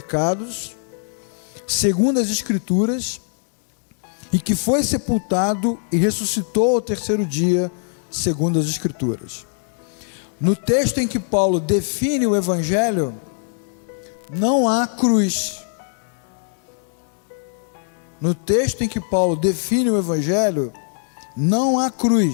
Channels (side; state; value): right; silent; 65 dB below the other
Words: segundo as Escrituras, e que foi sepultado e ressuscitou ao terceiro dia, segundo as Escrituras. No texto em que Paulo define o Evangelho, não há cruz. No texto em que Paulo define o Evangelho, não há